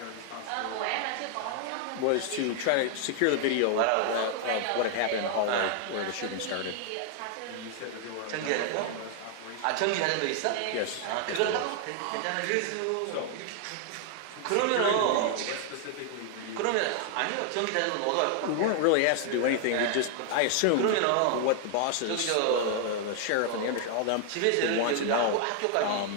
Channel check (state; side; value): different; both; correlation 0.00